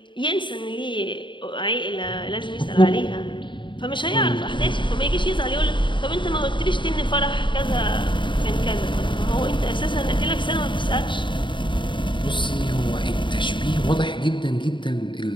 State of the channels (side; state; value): right; late; 0.23 ms